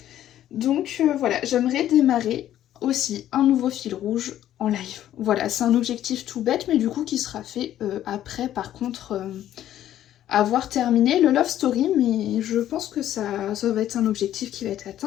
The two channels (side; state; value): right; quieter; 12.1 dB